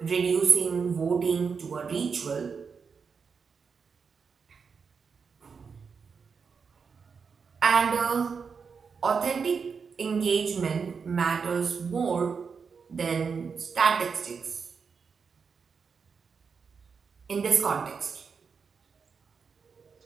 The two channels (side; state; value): left; quieter; 5.7 dB